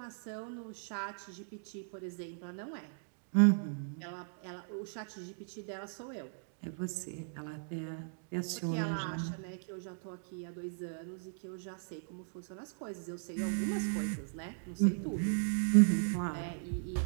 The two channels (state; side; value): silent; left; digital silence